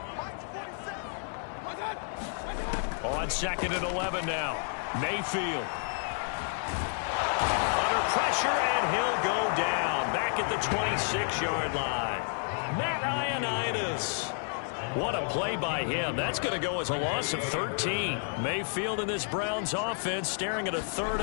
On 2nd and 11 now. Mayfield. Under pressure, and he'll go down. Back at the 26-yard line. Matt Ioannidis. What a play by him. That's going to go as a loss of 13. Mayfield in this Browns offense staring at a 3rd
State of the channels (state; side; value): silent; right; 57 dB below the other